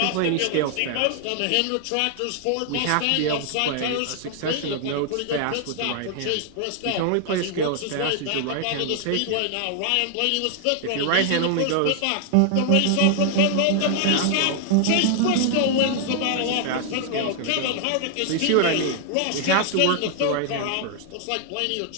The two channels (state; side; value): different; both; correlation 0.00